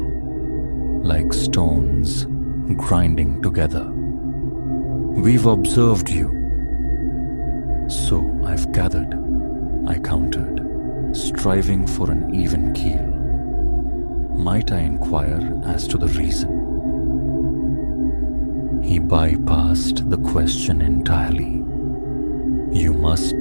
like stones grinding together. "We've observed you." "So I've gathered," I countered, striving for an even keel. Might I inquire as to the reason? He bypassed the question entirely. "You must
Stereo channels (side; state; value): both; inverted; correlation -1.00